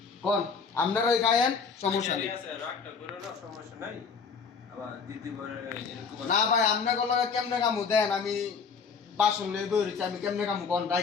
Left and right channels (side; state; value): right; quieter; 5.5 dB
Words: কোন আপনারাই খায়েন সমস্যা নেই রাগটা করো না সমস্যা নাই আবার দিদি বলে এরকম না ভাই আপনাকে লগে কেমনে কামু দেন আমি বাসন লয়ে বেরিয়েছি আমি কেমনে কামু কোন